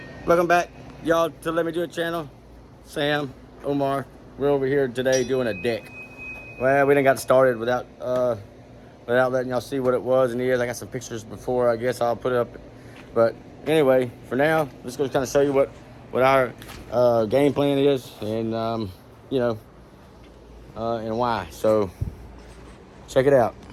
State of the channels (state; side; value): identical; both; correlation 1.00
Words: welcome back, y'all, to Let Me Do It channel. Sam, Omar, we're over here today doing a deck. Well, we didn't got started without letting y'all see what it was and is. I got some pictures before, I guess I'll put it up. But anyway, for now, let's go kind of show you what our game plan is and, and why. So, check it out.